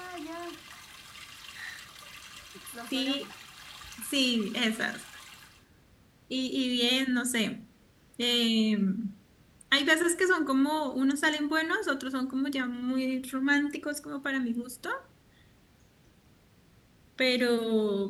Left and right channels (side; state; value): both; identical; correlation 1.00